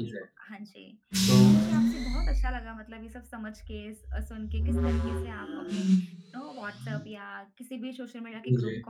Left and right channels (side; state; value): both; identical; correlation 1.00